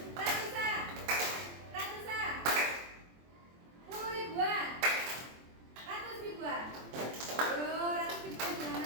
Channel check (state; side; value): late; left; 23 ms